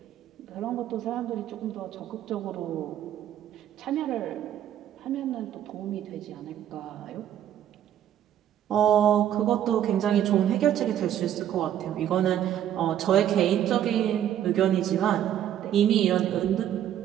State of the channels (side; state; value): left; quieter; 10.8 dB